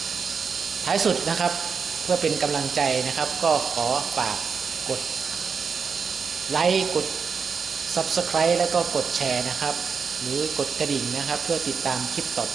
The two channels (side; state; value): left; quieter; 5.8 dB